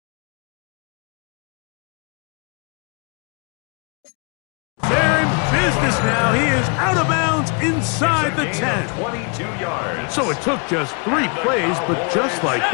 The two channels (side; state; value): right; quieter; 35.5 dB